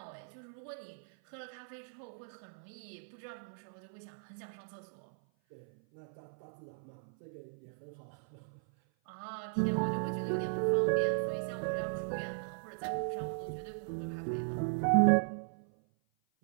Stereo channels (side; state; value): left; silent; 53 dB below the other